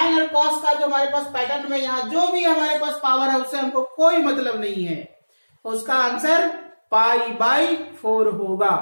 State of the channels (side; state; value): both; inverted; correlation -1.00